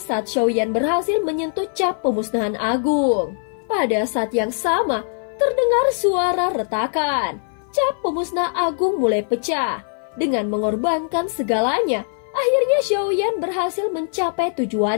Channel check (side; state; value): right; silent; 58 dB below the other